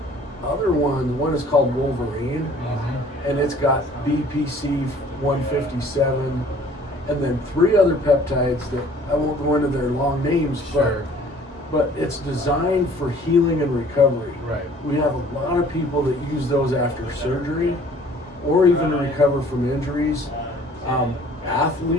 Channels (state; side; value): normal; both; correlation 0.53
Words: other ones. One is called Wolverine, and it's got BPC 157, and then 3 other peptides that I won't go into their long names, but it's designed for healing and recovery. Right. We have a lot of people that use those after surgery, or even to recover from injuries.